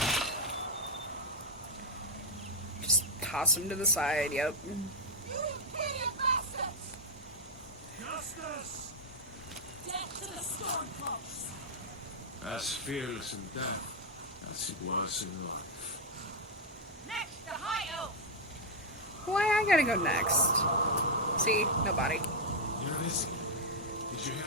Just toss him to the side, yep. You imperial bastards! Justice! Death to the stormcloaks! As fearless in death as it was in life. Next, the High Elf. Why I gotta go next? See? Nobody. You're listening. Did you hear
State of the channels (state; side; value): normal; both; correlation 0.00